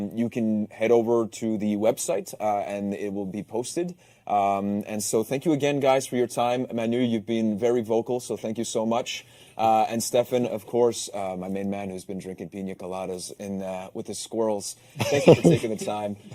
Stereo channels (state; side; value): identical; both; correlation 1.00